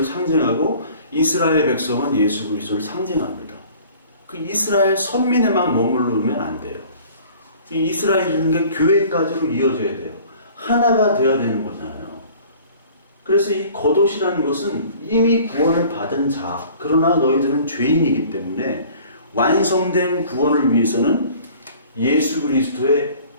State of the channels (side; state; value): both; inverted; correlation -0.49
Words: 상징하고 이스라엘 백성은 예수 그리스도를 상징합니다. 그 이스라엘 선민에만 머무르면 안 돼요. 이스라엘이라는 게 교회까지로 이어져야 돼요. 하나가 되어야 되는 거잖아요. 그래서 이 겉옷이라는 것은 이미 구원을 받은 자, 그러나 너희들은 죄인이기 때문에 완성된 구원을 위해서는 예수 그리스도의